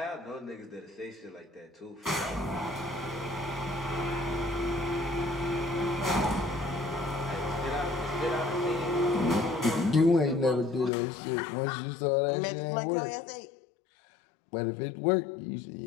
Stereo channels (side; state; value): right; drops out; at 10.9 s